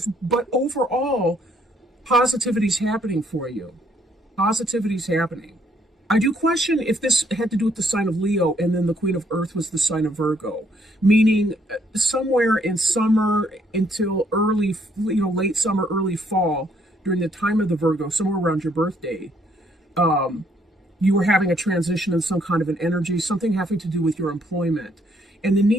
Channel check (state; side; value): normal; both; correlation 0.68